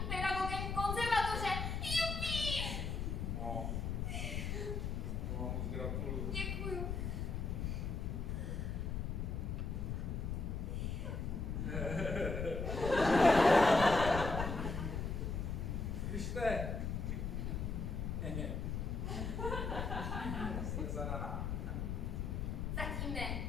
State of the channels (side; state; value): left; noise; rumble, 2 dB below the sound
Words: pedagogem konzervatoře. Jupi! No. To vám moc gratuluju. Děkuju. Slyšte? Jste zadaná. Zatím ne,